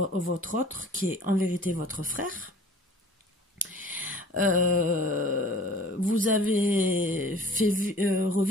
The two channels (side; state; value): both; normal; correlation 0.47